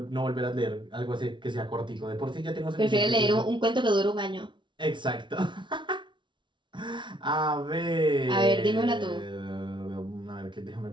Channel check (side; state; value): left; late; 0.23 ms